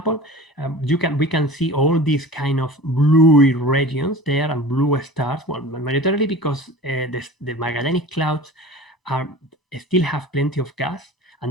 we can see all these kind of bluey regions there and blue stars. Well, majorly because the Magellanic Clouds still have plenty of gas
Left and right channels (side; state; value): both; normal; correlation 0.38